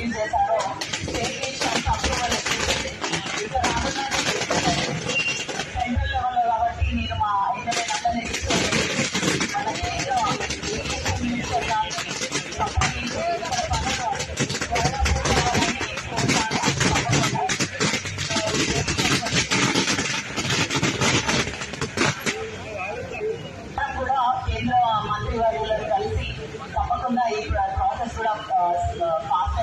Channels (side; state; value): both; identical; correlation 1.00